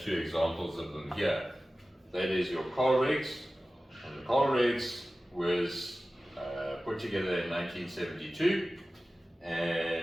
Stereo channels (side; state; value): both; normal; correlation 0.96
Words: two examples of them here. That is your coal regs, and the coal regs was put together in 1972,